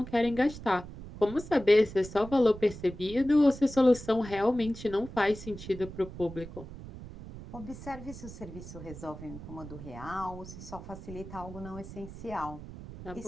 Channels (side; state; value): right; noise; rumble, 13 dB below the sound